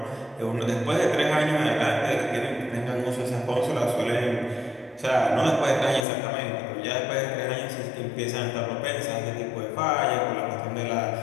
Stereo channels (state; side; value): drops out; right; at 6.1 s